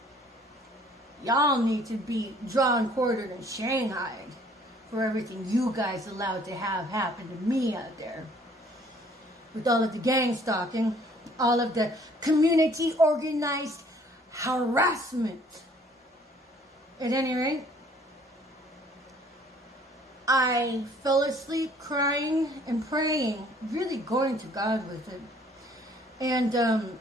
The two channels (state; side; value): normal; both; correlation 0.58